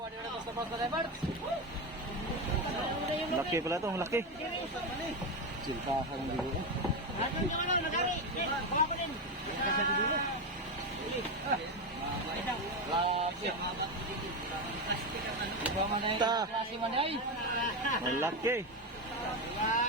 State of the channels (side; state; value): both; normal; correlation 0.13